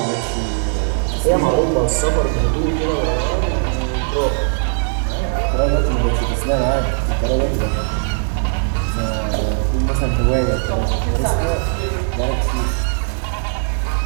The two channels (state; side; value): silent; left; 65 dB below the other